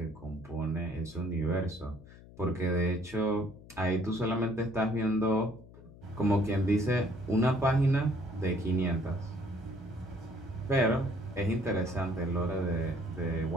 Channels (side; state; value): left; noise; hum, 20 dB below the sound